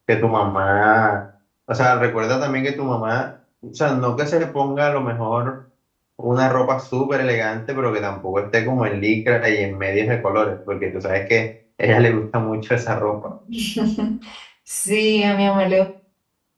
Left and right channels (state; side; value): identical; both; correlation 1.00